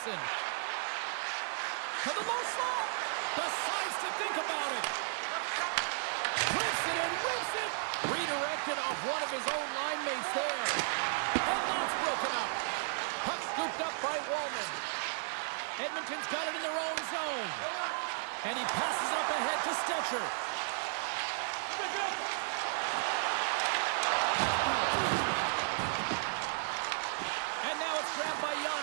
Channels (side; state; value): left; silent; digital silence